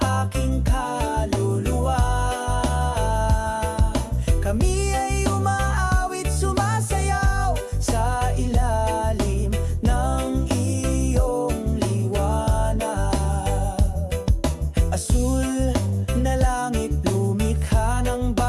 aking kaluluwa. Kami ay umaawit, sumasayaw sa ilalim ng iyong liwanag. Asul na langit, lumikha ng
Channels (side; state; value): both; identical; correlation 1.00